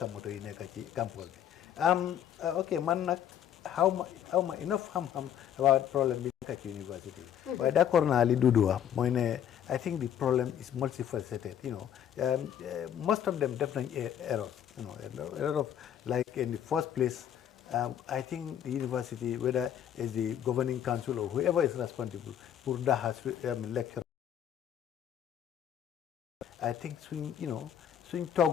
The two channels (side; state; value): right; quieter; 9.8 dB